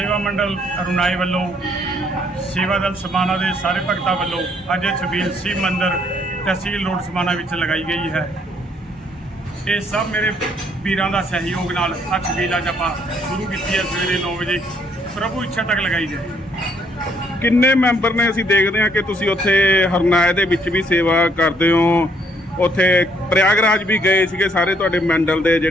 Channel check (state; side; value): normal; both; correlation 0.68